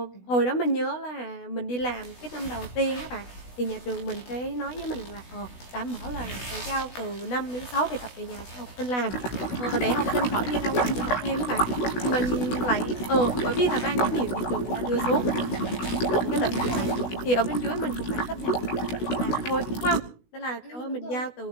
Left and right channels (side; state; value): right; late; 16 ms